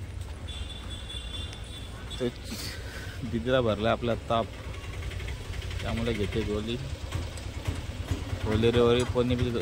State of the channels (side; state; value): both; identical; correlation 1.00